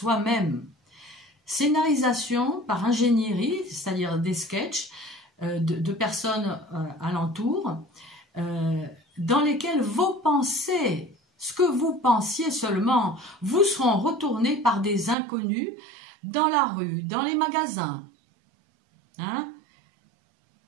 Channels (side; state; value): left; drops out; at 15.2 s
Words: Scénarisation par ingénierie, c'est-à-dire des sketchs de personnes alentour, dans lesquels vos pensées, ce que vous pensiez seulement, vous seront retournés par des inconnus dans la rue, dans les magasins, hein,